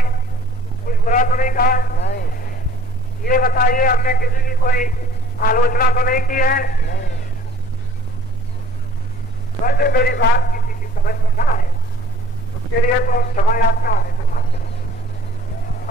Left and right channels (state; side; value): normal; both; correlation 0.54